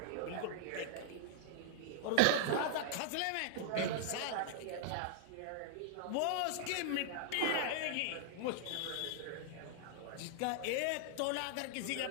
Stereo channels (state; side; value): different; both; correlation -0.01